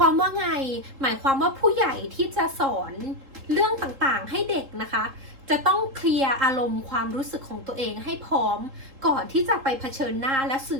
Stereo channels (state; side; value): late; left; 3.7 ms